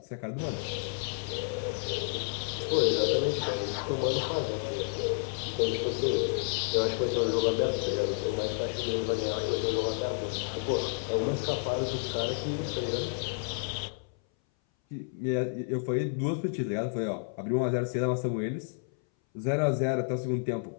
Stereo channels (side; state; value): right; silent; 57 dB below the other